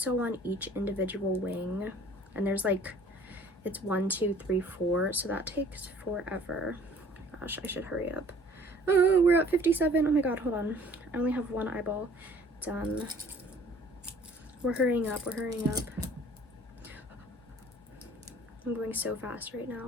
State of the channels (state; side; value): normal; both; correlation 0.53